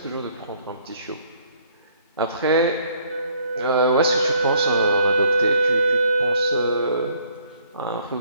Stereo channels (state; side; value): inverted; both; correlation -0.63